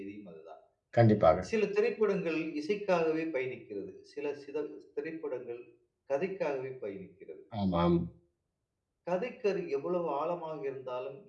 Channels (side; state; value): both; identical; correlation 1.00